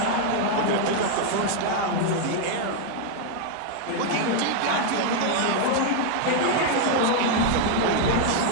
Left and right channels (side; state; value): both; different; correlation 0.00